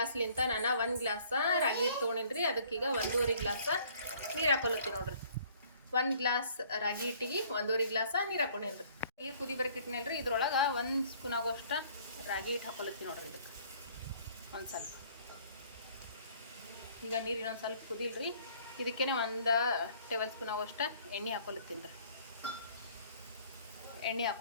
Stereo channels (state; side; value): inverted; both; correlation -0.57